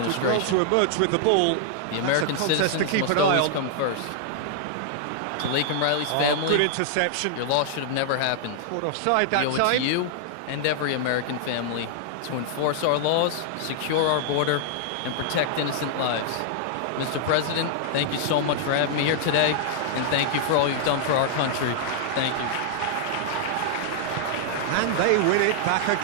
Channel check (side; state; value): both; different; correlation -0.01